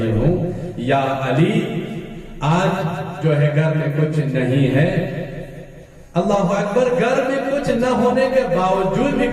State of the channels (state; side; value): identical; both; correlation 1.00